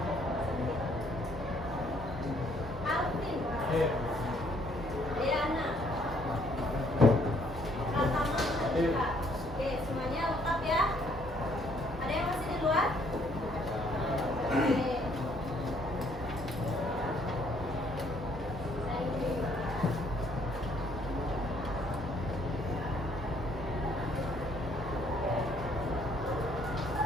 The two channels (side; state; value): both; normal; correlation 0.65